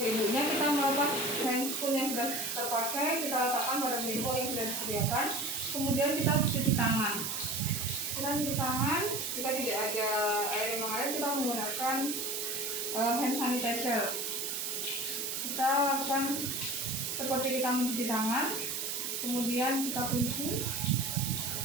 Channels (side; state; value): right; noise; hiss, 2 dB below the sound